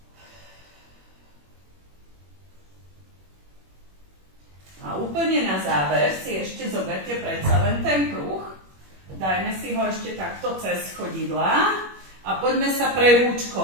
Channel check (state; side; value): late; left; 21 ms